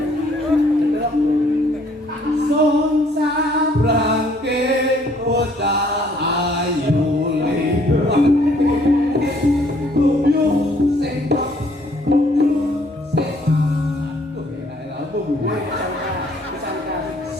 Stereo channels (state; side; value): normal; both; correlation 0.63